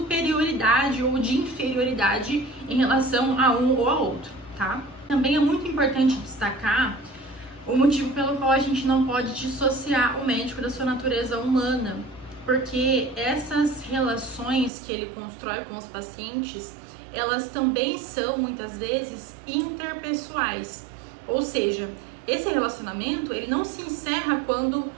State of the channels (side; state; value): left; drops out; at 14.7 s